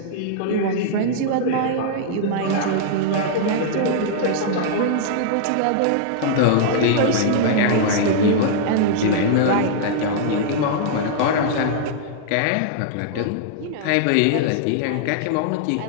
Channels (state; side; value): different; both; correlation -0.01